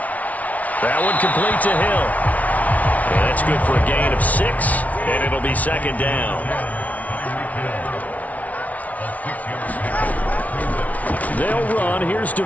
That one complete to Hill. And that's good for a gain of 6, and it'll be second down. They'll run. Here's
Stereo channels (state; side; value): late; right; 0.070 ms